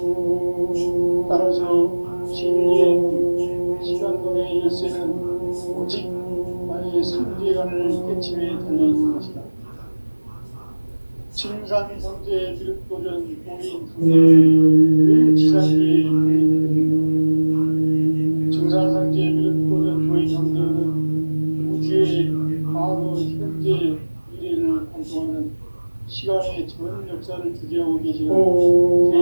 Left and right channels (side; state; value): both; inverted; correlation -1.00